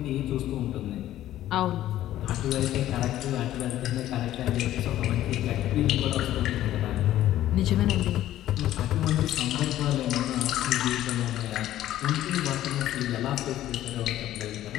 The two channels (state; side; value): quieter; right; 13.3 dB